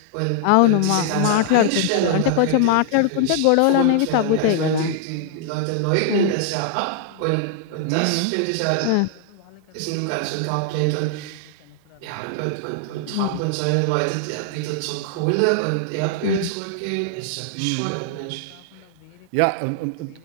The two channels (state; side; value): different; both; correlation -0.01